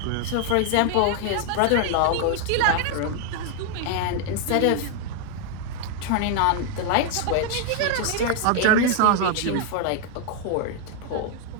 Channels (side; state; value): both; different; correlation 0.00